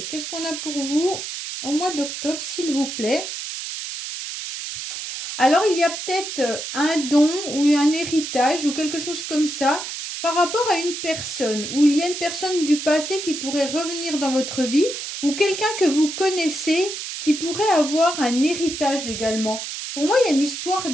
qu'est-ce qu'on a pour vous au mois d'octobre, s'il vous plaît? Alors, il y a peut-être un don ou un héritage ou quelque chose comme ça par rapport à une personne, où il y a une personne du passé qui pourrait revenir dans votre vie ou quelqu'un que vous connaissez qui pourrait avoir un héritage également. Pour moi, il y a une histoire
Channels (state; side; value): noise; right; hiss, 7 dB below the sound